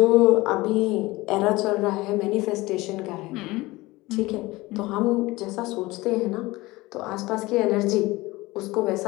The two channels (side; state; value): right; quieter; 20.5 dB